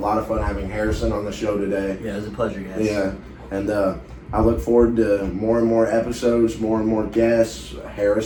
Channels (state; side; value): identical; both; correlation 1.00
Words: of fun having Harrison on the show today. Yeah, it was a pleasure, guys. Yeah, and I look forward to more and more episodes, more and more guests.